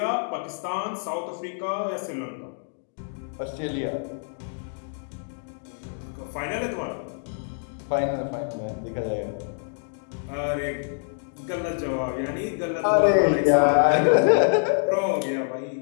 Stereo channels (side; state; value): right; silent; digital silence